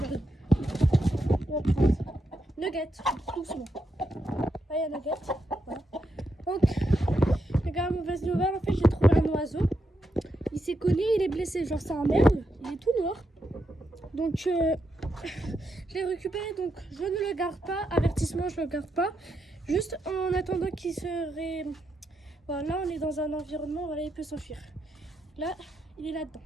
On va prendre Nugget, doucement. Là, il y a Nugget. Voilà. Donc, les gars, mauvaise nouvelle. En fait, j'ai trouvé un oiseau. Il s'est cogné, il est blessé. Genre, c'est un merle. Il est tout noir. Donc, je l'ai récupéré. Donc, je ne le garde pas. Avertissement, je ne le garde pas. Juste en attendant qu'il serait. Voilà, on est dans un environnement, voilà, il peut s'enfuir. Là, il est là-dedans.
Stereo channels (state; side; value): normal; both; correlation 0.83